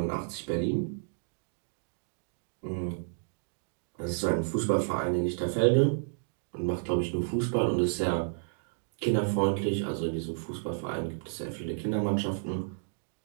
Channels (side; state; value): left; silent; digital silence